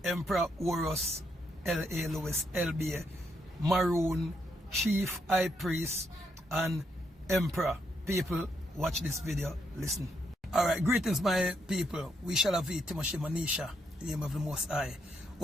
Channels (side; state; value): both; normal; correlation 0.77